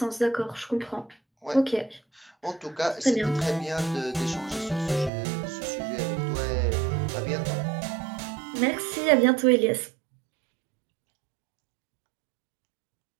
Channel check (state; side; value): drops out; left; at 5.1 s